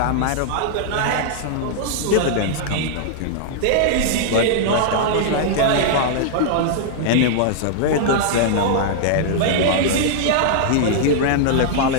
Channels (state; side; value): different; both; correlation -0.01